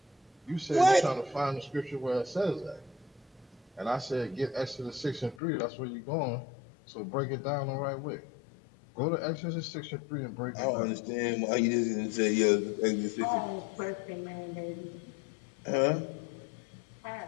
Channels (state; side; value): drops out; right; at 5.4 s